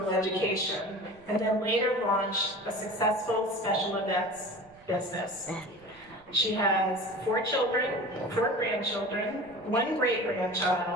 education, and then later launched a successful special events business. She has 4 children, 4 grandchildren, 1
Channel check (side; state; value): right; noise; rumble, 28 dB below the sound